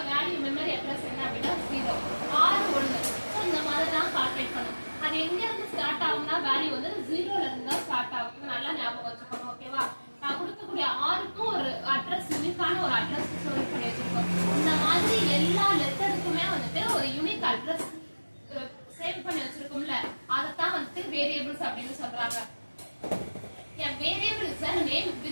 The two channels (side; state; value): both; inverted; correlation -1.00